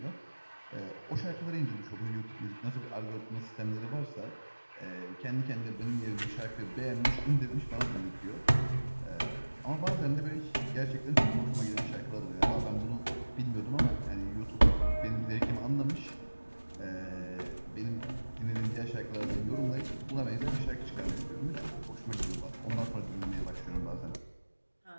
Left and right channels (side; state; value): both; inverted; correlation -1.00